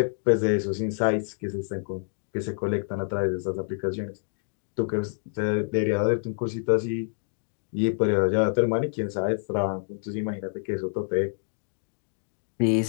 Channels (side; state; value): right; silent; digital silence